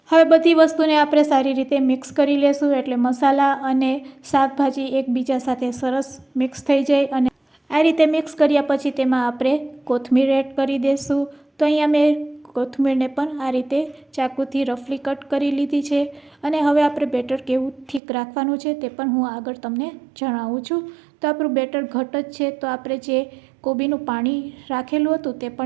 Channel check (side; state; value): left; drops out; at 18.0 s